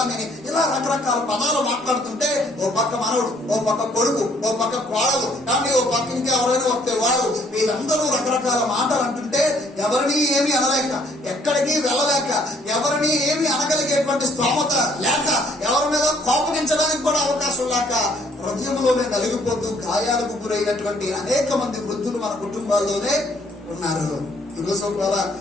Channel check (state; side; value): normal; both; correlation 0.63